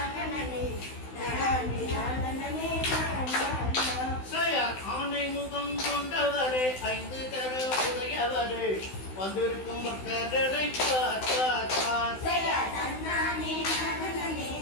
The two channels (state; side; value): late; right; 16 ms